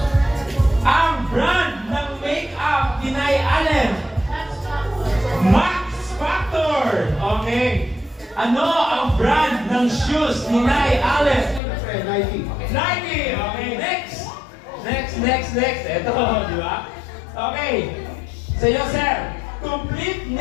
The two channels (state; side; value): drops out; right; at 11.6 s